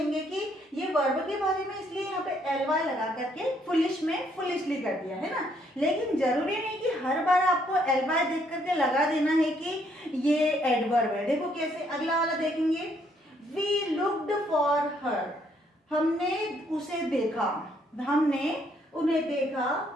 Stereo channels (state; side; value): normal; both; correlation 0.69